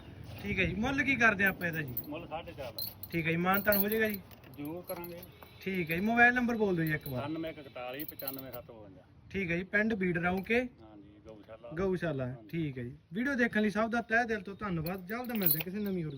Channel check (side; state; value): both; identical; correlation 1.00